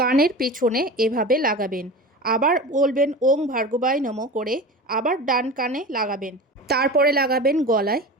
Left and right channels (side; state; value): both; normal; correlation 0.31